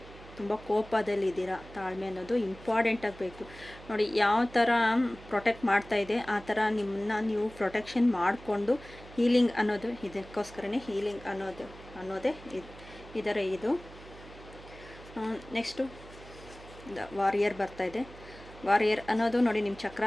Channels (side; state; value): right; noise; hum, 18 dB below the sound